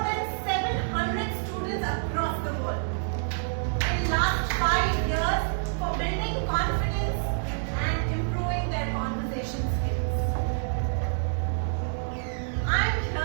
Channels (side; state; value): left; silent; digital silence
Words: 700 students across the world. In last 5 years, for building confidence and improving their conversation skills. I'm